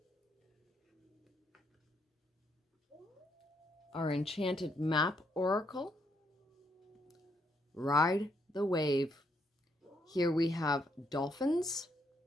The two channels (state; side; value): normal; both; correlation 0.74